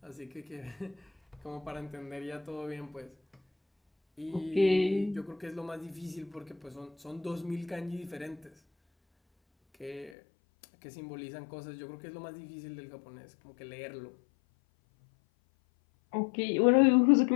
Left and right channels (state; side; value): drops out; right; at 10.1 s